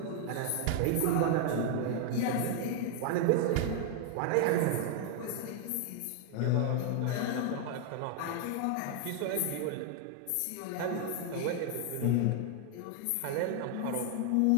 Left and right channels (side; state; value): both; different; correlation 0.00